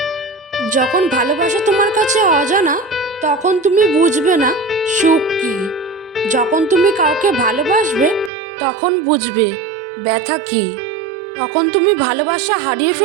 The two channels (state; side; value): drops out; left; at 8.3 s